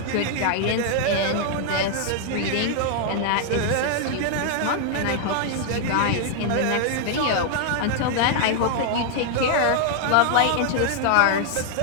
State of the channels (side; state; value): both; different; correlation 0.00